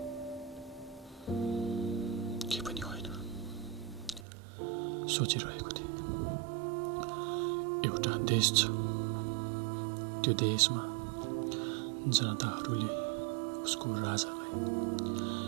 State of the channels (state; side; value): drops out; left; at 4.2 s